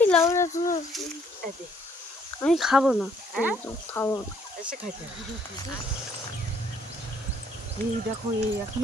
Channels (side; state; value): both; normal; correlation 0.65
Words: লাউরা তুমি, আমি খাবো না, খাবো না। এসে খাইতে হবে। এই দেখো এই